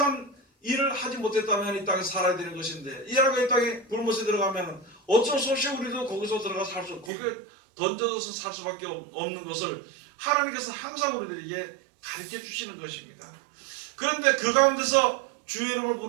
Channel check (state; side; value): drops out; left; at 7.1 s